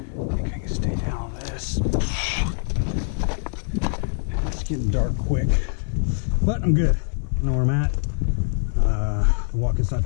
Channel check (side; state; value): right; silent; 55 dB below the other